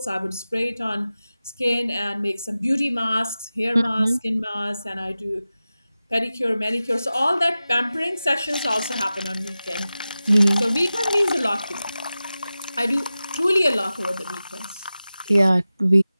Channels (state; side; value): inverted; both; correlation -0.95